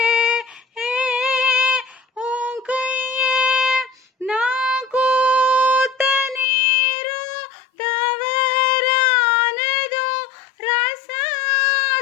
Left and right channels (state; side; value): drops out; right; at 6.5 s